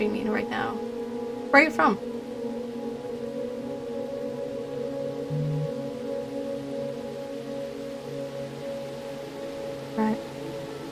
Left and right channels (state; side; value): identical; both; correlation 1.00